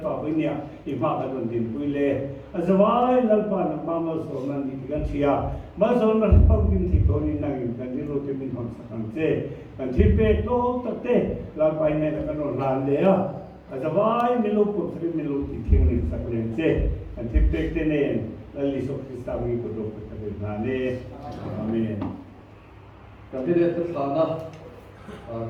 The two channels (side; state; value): both; identical; correlation 1.00